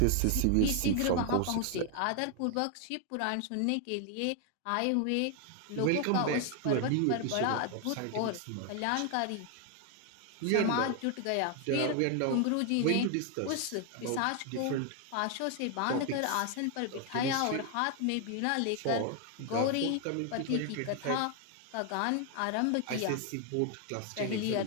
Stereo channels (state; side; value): different; both; correlation 0.01